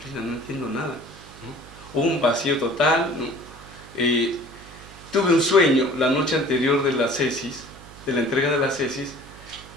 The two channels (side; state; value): right; noise; hum, 20 dB below the sound